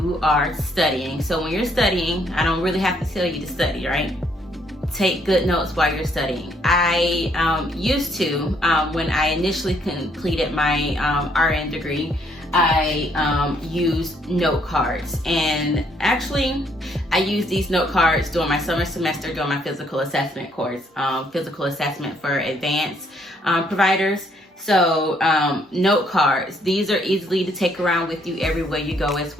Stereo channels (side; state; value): both; normal; correlation 0.69